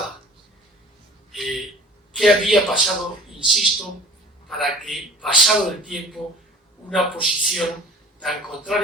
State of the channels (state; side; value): normal; both; correlation 0.44